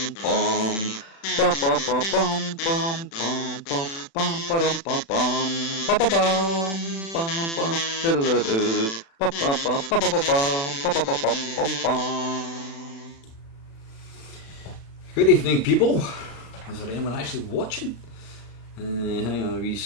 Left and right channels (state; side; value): late; right; 36 ms